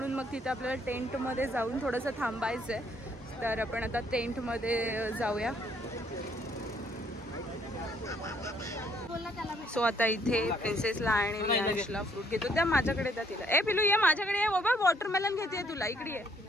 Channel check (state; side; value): normal; both; correlation 0.67